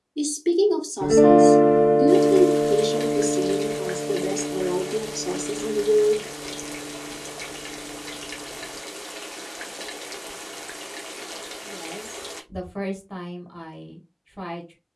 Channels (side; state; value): both; identical; correlation 1.00